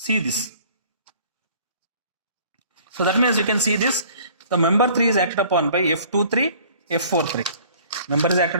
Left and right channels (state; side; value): inverted; both; correlation -0.52